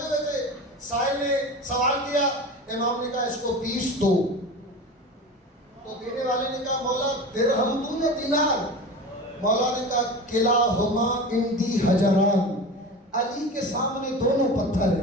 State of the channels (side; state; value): both; normal; correlation 0.31